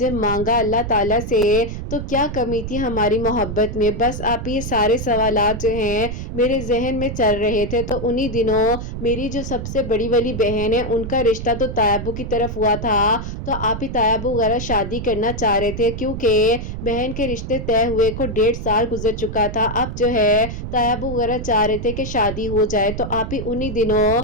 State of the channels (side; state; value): right; noise; rumble, 6 dB below the sound